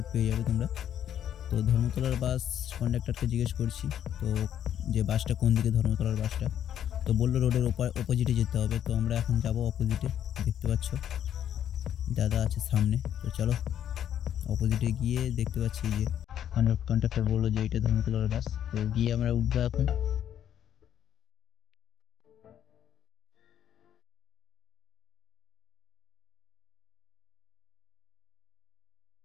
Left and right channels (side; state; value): right; quieter; 10.1 dB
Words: পেয়ে যাবে তোমরা। তো ধর্মতলার বাস কন্ডাক্টরকে জিজ্ঞেস করছি তো যে বাসটা কোন দিকে, ধর্মতলার বাসটা, তো বললো রোডের অপোজিটে যেতে হবে। তো আমরা এখন যাব অপোজিটে, দেখতে পাচ্ছ দাদা আছে সামনে। তো চলো অপোজিটে গিয়ে দেখতে পাচ্ছি যে কন্ডাক্টর বললো যে এটা ধর্মতলার বাস, তো গিয়ে আমরা উঠবো এখন।